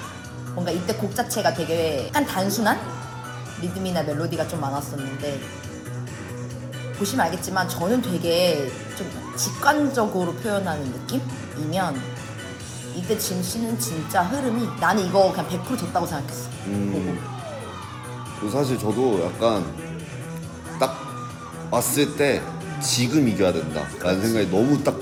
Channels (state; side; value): identical; both; correlation 1.00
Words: 뭔가 이때 곡 자체가 되게 약간 단순한 리듬이나 멜로디가 좀 많았었는데 보시면 알겠지만 저는 되게 좀 직관적으로 표현하는 느낌이면 이때 짐 씨는 진짜 흐름이 나는 이거 그냥 100% 졌다고 생각했어. 그리고 사실 저도 약간 딱 왔을 때 지금 이겨야 된다 라는 생각이 너무 딱